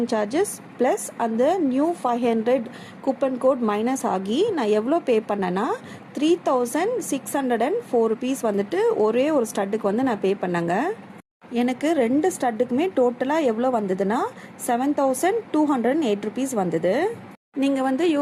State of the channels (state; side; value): identical; both; correlation 1.00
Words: சார்ஜஸ் ப்ளஸ் அந்த நியூ 500 கூப்பன் கோட் மைனஸ் ஆகி நான் எவ்வளோ பே பண்ணேன்னா 3604 ருபீஸ் வந்துட்டு ஒரே ஒரு ஸ்டட்டுக்கு வந்து நான் பே பண்ணேங்க. எனக்கு 2 ஸ்டட்டுக்குமே டோட்டலாக எவ்வளோ வந்ததுன்னா 7208 ருபீஸ் வந்தது. நீங்கள் வந்து